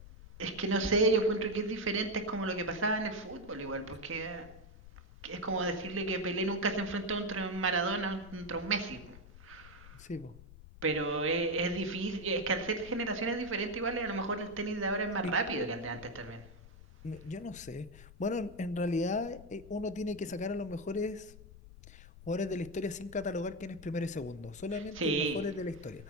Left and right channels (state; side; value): noise; left; rumble, 18 dB below the sound